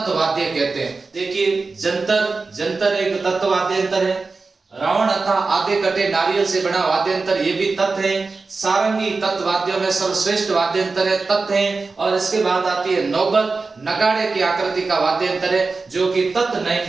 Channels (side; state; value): left; quieter; 4.1 dB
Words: कहते हैं। देखिए, जंतर एक तत्ववाद्य यंत्र है। रावण अथा आधे कटे नारियल से बना वाद्य यंत्र, ये भी तत् है। सारंगी तत् वाद्यों में सर्वश्रेष्ठ वाद्य यंत्र है, तत् है। और इसके बाद आती है नौबत, नगाड़े की आकृति का वाद्य यंत्र है, जो कि तत् नहीं